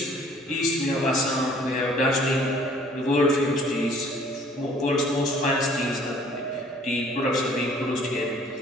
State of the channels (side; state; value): both; normal; correlation 0.56